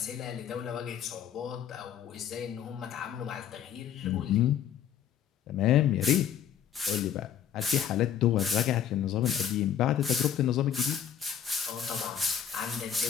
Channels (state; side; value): quieter; right; 9.0 dB